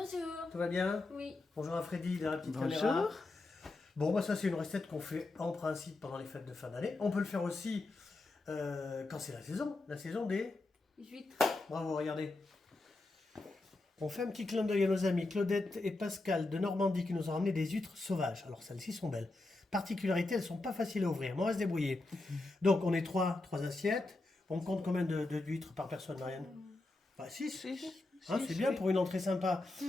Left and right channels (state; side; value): quieter; right; 3.1 dB